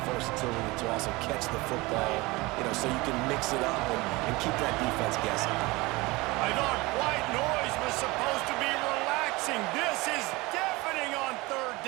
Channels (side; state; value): left; quieter; 22.6 dB